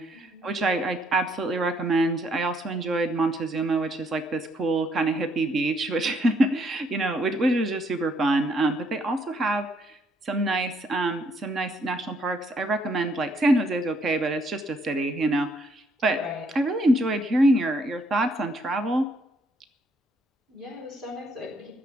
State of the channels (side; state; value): both; normal; correlation 0.70